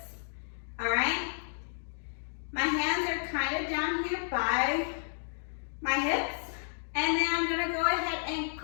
all right? My hands are kind of down here by my hips, and then I'm gonna go ahead and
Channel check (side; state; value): right; silent; digital silence